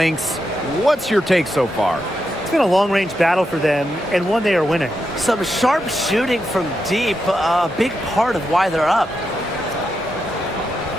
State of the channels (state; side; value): normal; both; correlation 0.85